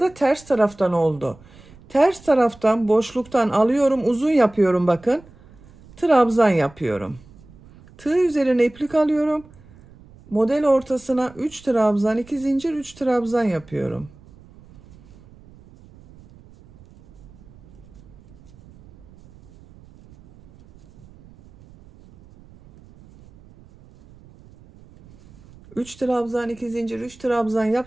ters taraftan oldu. Ters taraftan boşluktan alıyorum, uzun yapıyorum bakın. Trabzan yapıyorum. Tığ üzerine iplik alıyorum. Model ortasına 3 trabzan, 2 zincir, 3 trabzan yapıyorum. Üç trabzan, 2 zincir, 3 trabzan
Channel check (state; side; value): noise; right; rumble, 24 dB below the sound